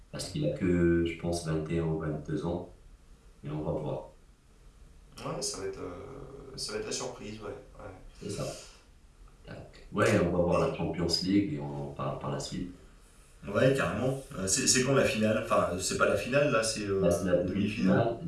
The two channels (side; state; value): both; identical; correlation 1.00